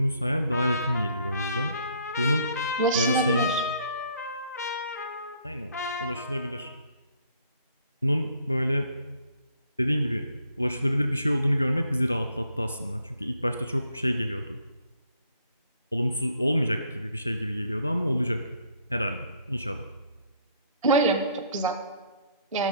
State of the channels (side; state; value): both; inverted; correlation -0.64